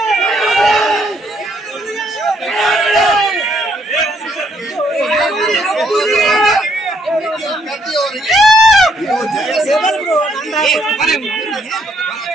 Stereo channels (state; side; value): normal; both; correlation 0.71